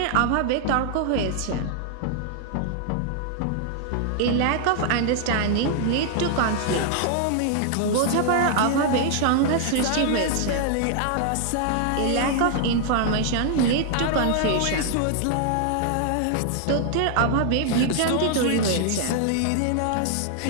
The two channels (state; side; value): different; both; correlation 0.00